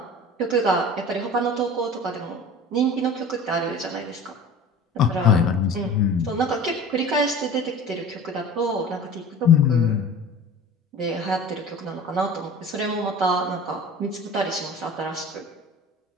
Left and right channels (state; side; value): normal; both; correlation 0.39